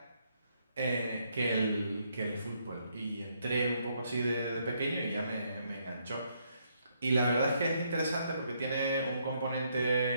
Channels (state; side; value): inverted; both; correlation -0.73